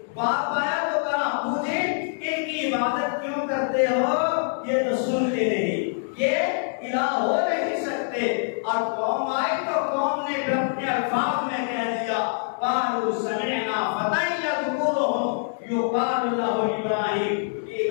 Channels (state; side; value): silent; right; digital silence